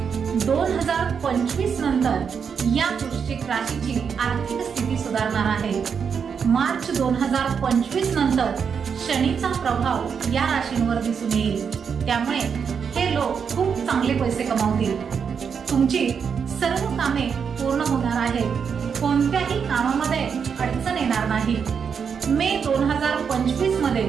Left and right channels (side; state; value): left; quieter; 6.6 dB